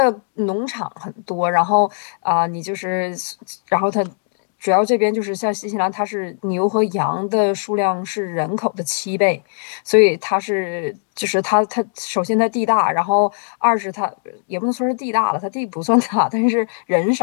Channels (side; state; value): right; silent; digital silence